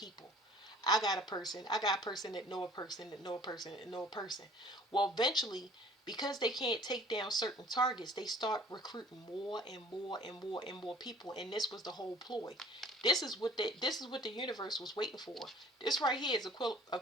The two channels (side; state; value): both; normal; correlation 0.51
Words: I got a person that know a person that know a person that know a person. Well, eventually, because they can't take down certain targets, they start recruiting more and more and more and more people, and this was the whole ploy. This is what the universe was waiting for. This right here is